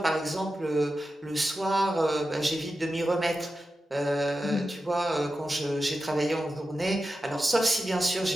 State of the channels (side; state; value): both; normal; correlation 0.92